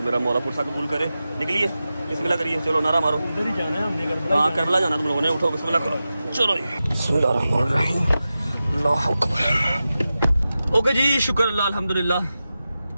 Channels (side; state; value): both; inverted; correlation -0.93